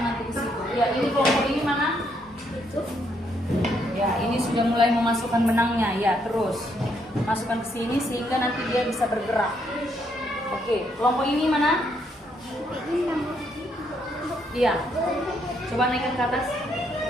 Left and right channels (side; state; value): both; normal; correlation 0.74